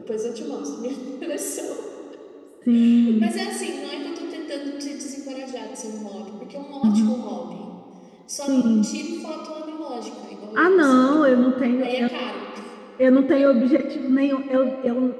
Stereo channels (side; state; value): both; identical; correlation 1.00